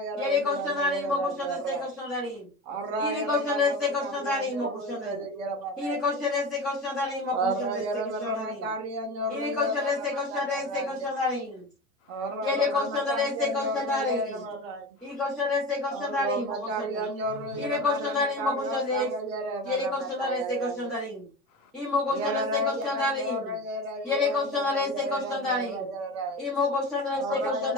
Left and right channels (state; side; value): normal; both; correlation 0.28